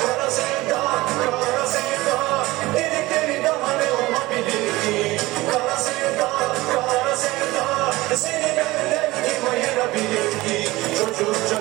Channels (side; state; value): left; quieter; 19.7 dB